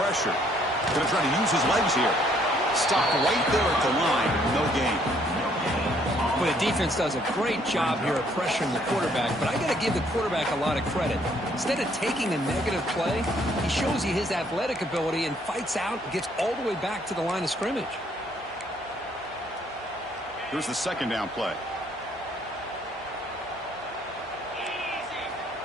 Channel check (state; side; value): normal; both; correlation 0.65